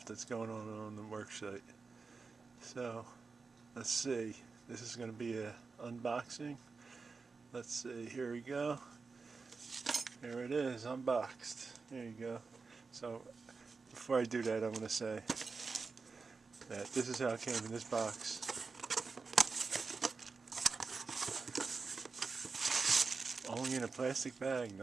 that's going on the worksite. So let's see. This is going to be a unboxing. Let's see, here we go. Here it is, unboxed. There you go. So before I do that, I'm going to say that this is how it came in this box. Only in a plastic bag,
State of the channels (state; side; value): quieter; left; 4.5 dB